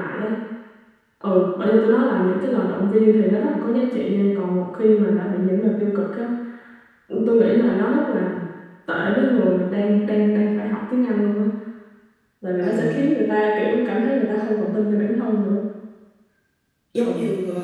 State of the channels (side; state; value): both; identical; correlation 1.00